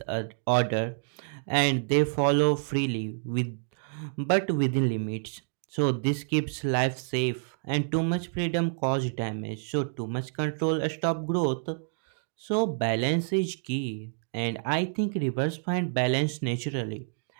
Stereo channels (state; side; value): silent; left; digital silence